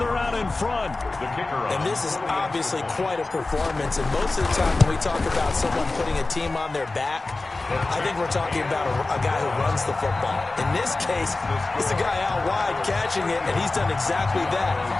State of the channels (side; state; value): right; quieter; 3.3 dB